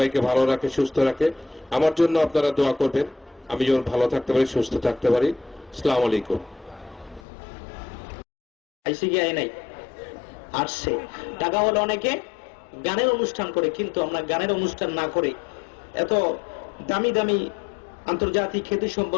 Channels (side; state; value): right; drops out; at 7.2 s